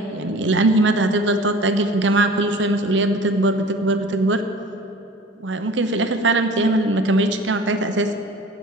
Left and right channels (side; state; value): both; normal; correlation 0.43